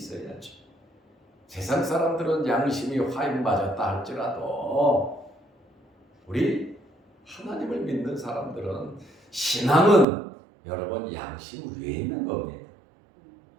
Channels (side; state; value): left; drops out; at 10.1 s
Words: 세상 사람들은 양심이 화인 맞았다 할지라도 우리 하나님을 믿는 사람들은, 신앙은 여러분 양심 위에 있는 겁니다.